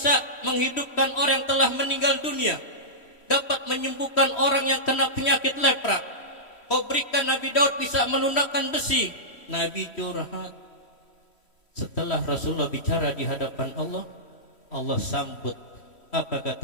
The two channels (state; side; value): late; right; 3.1 ms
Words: menghidupkan orang yang telah meninggal dunia, dapat menyembuhkan orang yang kena penyakit lepra. Kau berikan Nabi Daud bisa melunakkan besi. Nabi curhat. Setelah Rasulullah bicara di hadapan Allah, Allah sambut. Apa